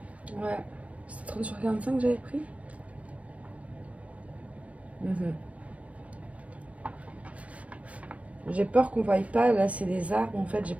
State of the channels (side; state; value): left; late; 0.065 ms